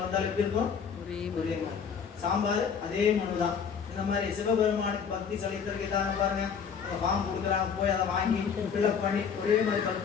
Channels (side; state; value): right; quieter; 6.8 dB